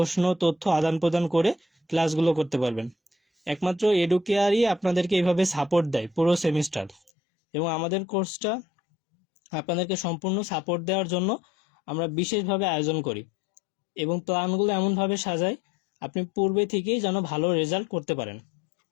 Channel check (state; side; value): drops out; right; at 7.1 s